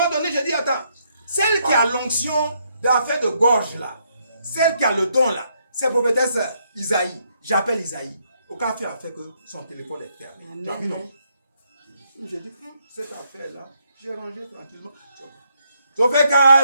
donné, je dis, attends, celle qui a l'onction d'affaire de gorge là, celle qui a le don là, c'est prophétesse Isaïe. J'appelle Isaïe. Aucun fait a fait que son téléphone est fermé. Tu as vu, non? J'ai dit, cette affaire-là, j'ai rangé tranquillement. Sauf qu'à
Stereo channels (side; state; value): both; inverted; correlation -0.75